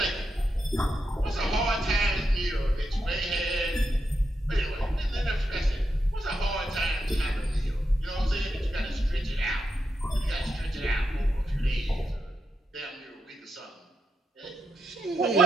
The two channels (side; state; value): both; normal; correlation 0.84